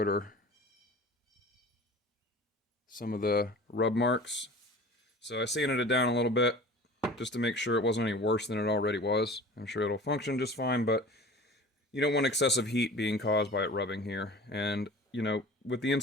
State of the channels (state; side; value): normal; both; correlation 0.40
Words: some of the rub marks. So I sanded it down a little bit just to make sure it wasn't any worse than it already was. I'm sure it'll function just fine, but you don't want excessive heat being caused by it rubbing here. And, you know, with the